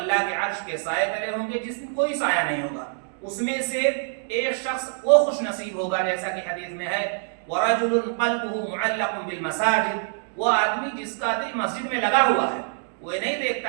کے عرش کے سائے تلے ہوں گے جس میں کوئی سایہ نہیں ہوگا. اس میں سے ایک شخص وہ خوش نصیب ہوگا جیسا کہ حدیث میں ہے ورجل قلبه معلق بالمساجد, وہ آدمی جس کا دل مسجد میں لگا ہوا ہے, وہ نہیں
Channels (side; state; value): left; silent; digital silence